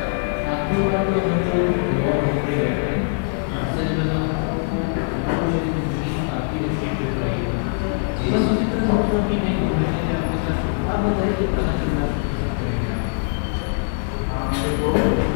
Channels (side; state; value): right; silent; digital silence